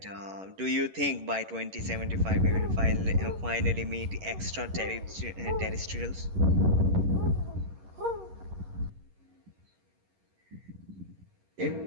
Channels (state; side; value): late; left; 11 ms